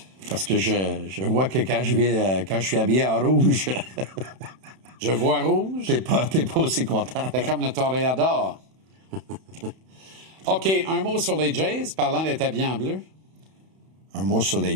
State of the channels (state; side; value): late; left; 31 ms